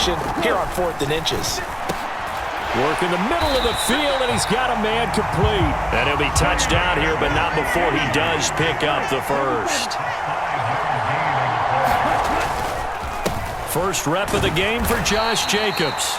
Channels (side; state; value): both; identical; correlation 1.00